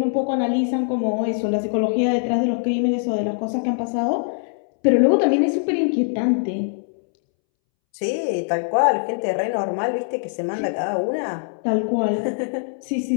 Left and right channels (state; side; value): silent; right; 64 dB below the other